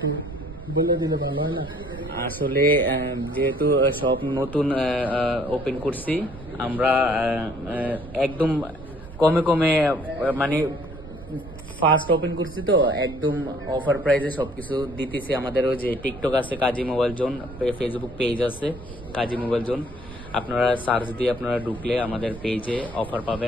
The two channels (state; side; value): noise; right; rumble, 15 dB below the sound